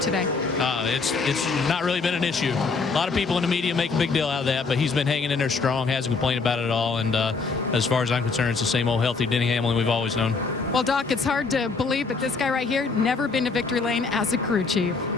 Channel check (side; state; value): right; quieter; 4.5 dB